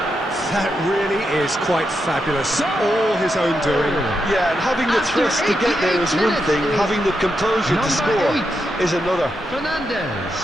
That really is quite fabulous. All his own doing. Yeah, and having the thrust to get there is one thing, having the composure to score is another. Fernandez.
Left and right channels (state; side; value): normal; both; correlation 0.84